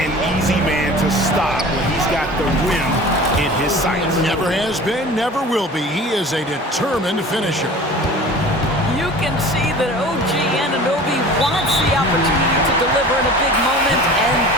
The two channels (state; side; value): normal; both; correlation 0.41